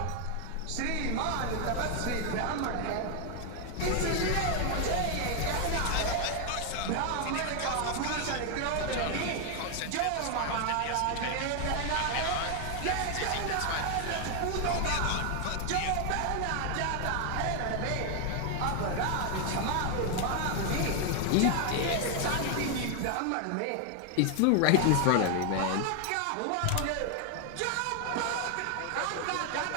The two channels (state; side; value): different; both; correlation 0.00